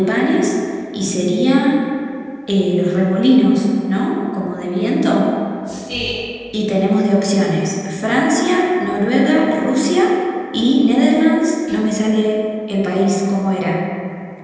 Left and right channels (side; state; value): both; identical; correlation 1.00